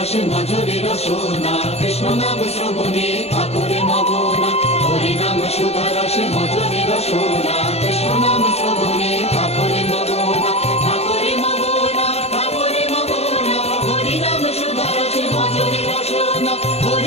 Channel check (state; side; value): late; right; 0.30 ms